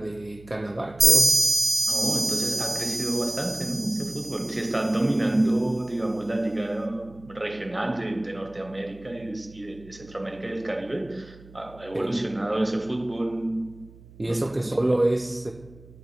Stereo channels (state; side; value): noise; right; hum, 22 dB below the sound